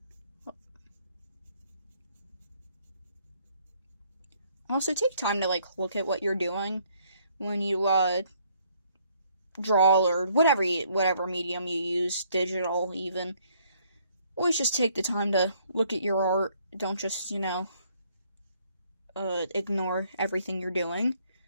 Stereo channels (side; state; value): both; inverted; correlation -0.66